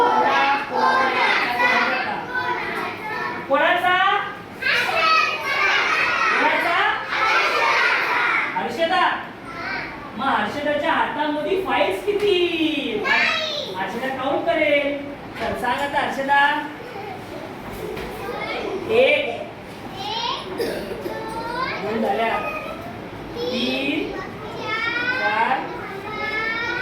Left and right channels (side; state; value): both; identical; correlation 1.00